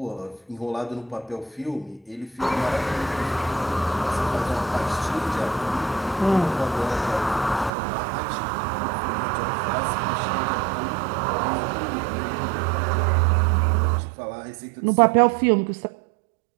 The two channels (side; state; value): left; drops out; at 7.7 s